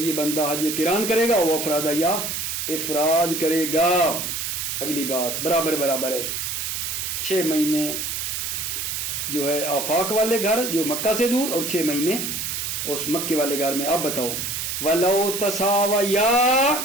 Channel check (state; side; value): noise; right; hiss, 3 dB below the sound